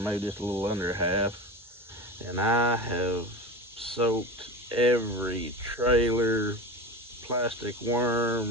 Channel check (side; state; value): both; normal; correlation 0.28